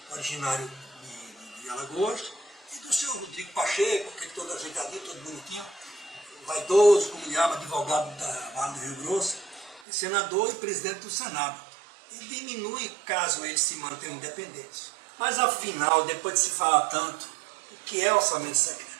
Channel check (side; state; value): left; drops out; at 9.8 s